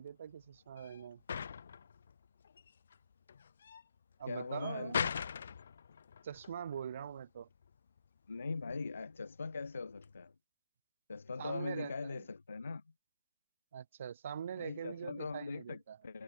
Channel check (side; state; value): both; inverted; correlation -0.80